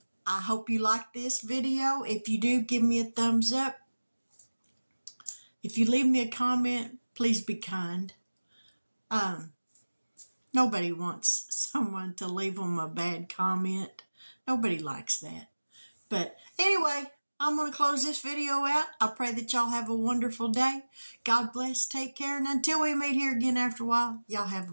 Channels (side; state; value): both; inverted; correlation -1.00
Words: I hope you like this video. If you do, give me a thumbs up. If you leave me a comment, please be kind. Nobody wants someone to leave them a bad comment. Nobody likes that. But anyway, I'm going to close this video out. I pray that y'all have a wonderful day. God bless. Take care. And until we meet here again after a while, y'all have a